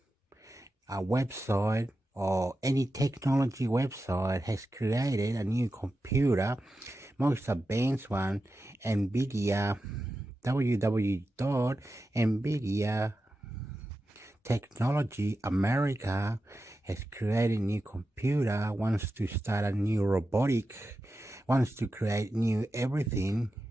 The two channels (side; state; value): both; normal; correlation 0.91